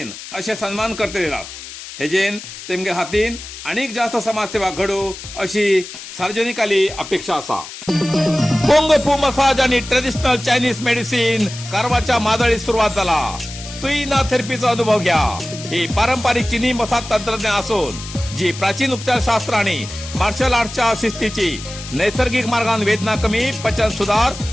असे सन्मान करते येतात. हेजेन तेमगे हातीन अनेक जास्त समाजसेवा घडू अशी सार्वजनिकाली अपेक्षा आसा. कुंग फू मसाज आणि ट्रेडिशनल चायनीज मेडिसिन कारवारच्या मादळीत सुरुवात झाला. तुईना थेरपीचा अनुभव घ्या. ही पारंपरिक चीनी मसाज तंत्रज्ञान असून जी प्राचीन उपचारशास्त्र आणि मार्शल आर्टच्या शिस्तीची नैसर्गिक मार्गान वेदना कमी, पचन सुधार,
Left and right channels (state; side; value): noise; left; hiss, 12 dB below the sound